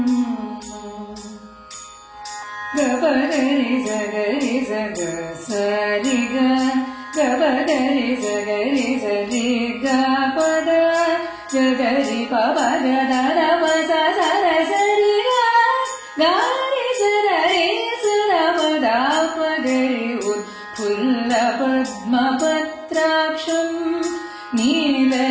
गबगरि जगरि जग सरि ग गबगरि जगरि जरि ग पद गगरि पव ग द द प स स र सरि ग गरि सरि सर प द प गरि उत्फुल्लपद्मपत्राक्षं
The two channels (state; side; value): identical; both; correlation 1.00